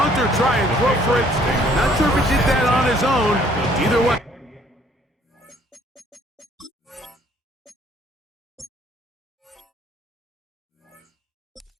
try and throw for it. Not sure if he did that on his own. Either way.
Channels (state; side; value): normal; both; correlation 0.61